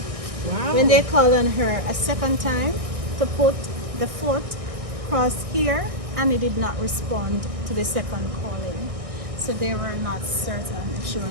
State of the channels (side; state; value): left; late; 1.6 ms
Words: When they called on her a second time to put the 4th cross here, Annie did not respond to the second calling. So they were not certain if she